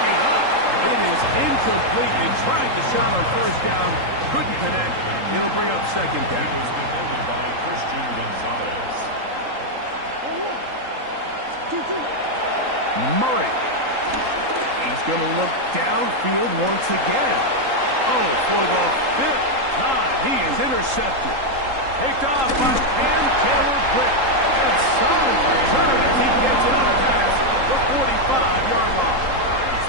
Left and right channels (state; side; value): late; left; 3.8 ms